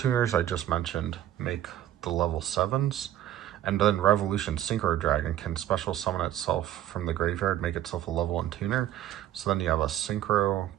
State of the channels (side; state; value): left; quieter; 12.4 dB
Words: I just mentioned make the level 7s, and then Revolution Synchro Dragon can special summon itself from the graveyard, make itself a level 1 tuner. So then you have a Synchro